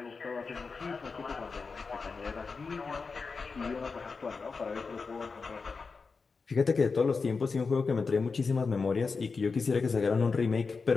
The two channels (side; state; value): right; quieter; 4.7 dB